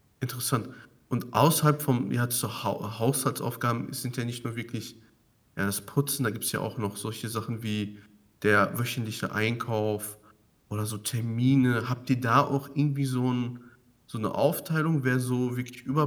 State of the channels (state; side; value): identical; both; correlation 1.00